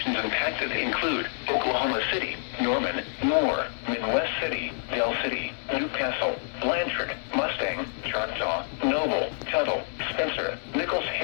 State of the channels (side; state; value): right; silent; 60 dB below the other